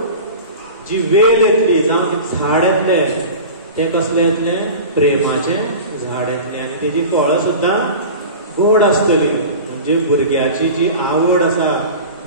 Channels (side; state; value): both; inverted; correlation -0.35